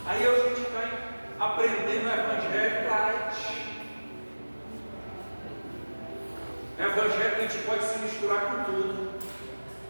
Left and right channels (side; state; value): both; inverted; correlation -1.00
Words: Aí a gente vai aprendendo o evangelho light. É o evangelho que a gente pode se misturar com tudo.